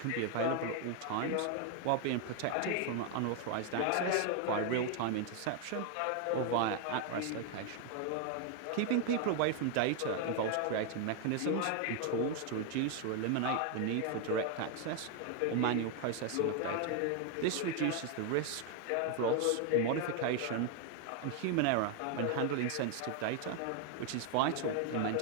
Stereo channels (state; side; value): different; both; correlation 0.01